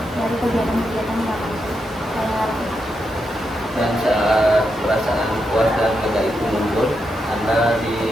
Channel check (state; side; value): normal; both; correlation 0.84